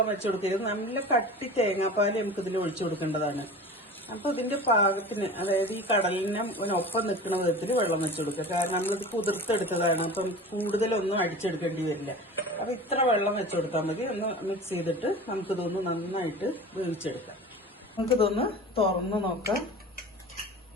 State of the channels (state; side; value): normal; both; correlation 0.36